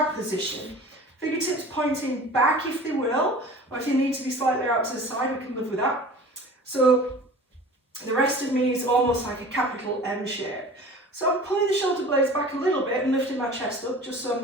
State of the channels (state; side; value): normal; both; correlation 0.41